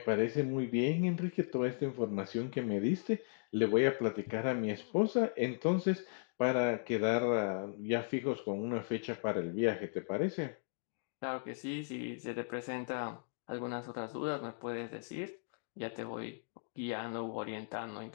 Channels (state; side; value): silent; right; digital silence